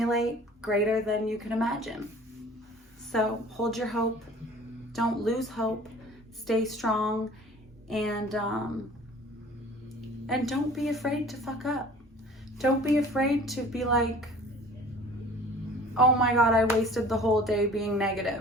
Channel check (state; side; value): normal; both; correlation 0.47